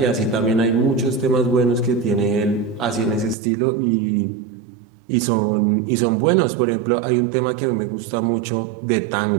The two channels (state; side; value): drops out; left; at 3.4 s